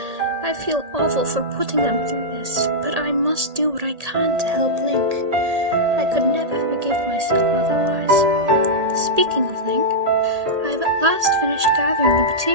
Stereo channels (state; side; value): late; left; 1.8 ms